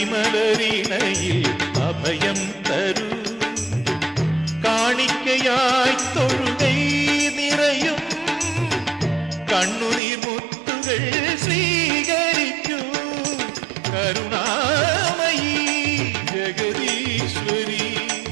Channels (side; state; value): left; drops out; at 10.0 s